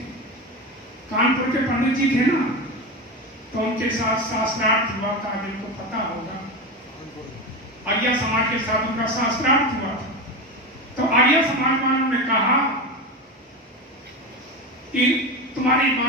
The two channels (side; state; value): both; normal; correlation 0.21